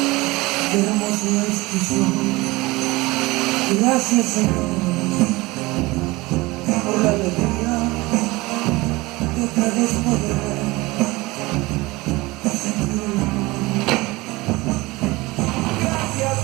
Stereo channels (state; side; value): quieter; left; 21.7 dB